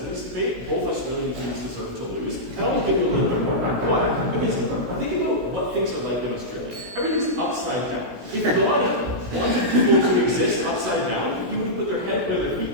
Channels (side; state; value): left; late; 16 ms